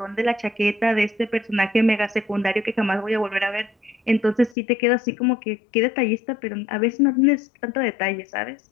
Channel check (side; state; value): right; drops out; at 4.5 s